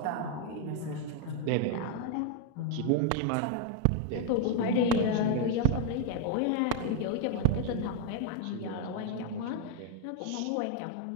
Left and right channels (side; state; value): both; different; correlation 0.00